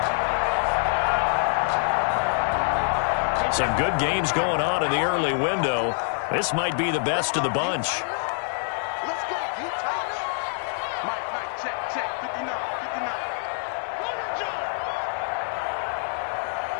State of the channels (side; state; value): right; silent; 61 dB below the other